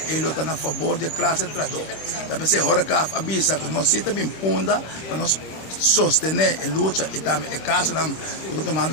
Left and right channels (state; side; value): late; right; 26 ms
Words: estão a favor da classe trador. Talvez a hora que avisa que nós estamos bem punda para nós sostener a luta e também o caso que estão